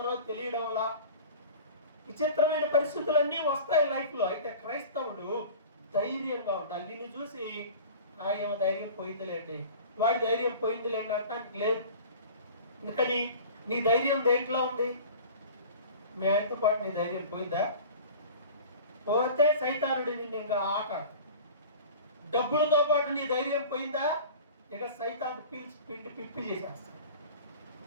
తెలియడంలా, విచిత్రమైన పరిస్థితులన్నీ వస్తాయి లైఫ్లో. అయితే క్రైస్తవుడు ధైర్యంగా ఉండాలి. నిన్ను చూసి ఏమో ధైర్యం పోయిందిలేండి, వాడి ధైర్యం పోయిందిలేండి అంటానికి లేదు. ఎందుకని? నీ ధైర్యం దేంట్లో ఉంది? మీ ఆయనతో పాటు నీ ధైర్యం పోయిందా? పోతే సైతానుడి నిన్ను ఇంకా ఆట. డబ్బులతో పాటు నీ ధైర్యం పోయిందా? ఇక సైతాను పీల్చి పిండి పిప్పి చేసేస్తాడు.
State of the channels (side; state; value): both; inverted; correlation -0.40